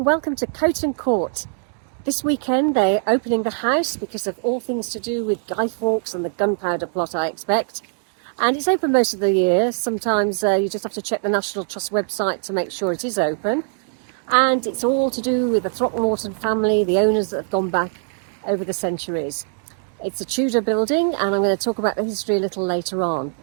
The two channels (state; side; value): silent; left; digital silence